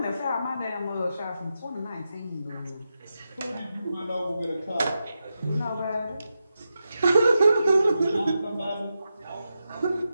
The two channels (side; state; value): both; inverted; correlation -0.89